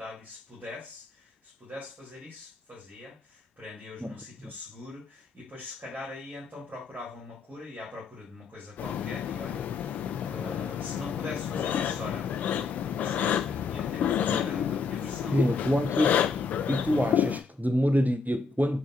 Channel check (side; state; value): right; quieter; 4.1 dB